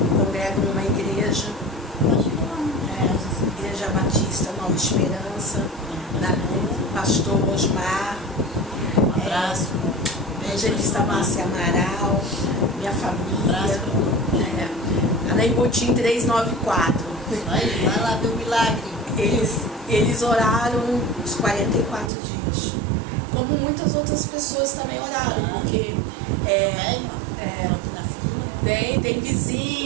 congrego numa igreja, Igreja Batista Nova Esperança, da pastor Osmar, Um abraço. evangelista Márcia Amaral, minha família, Abraço. Anaimbutim 394. Vai lá ver o milagre. Eles oraram os 44 dias. Como muitas outras pessoas também oraram, porque tem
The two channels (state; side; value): drops out; left; at 22.1 s